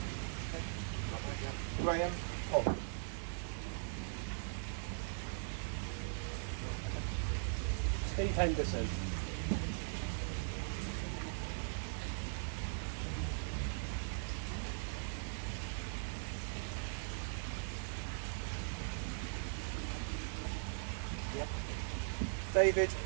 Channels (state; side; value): silent; left; digital silence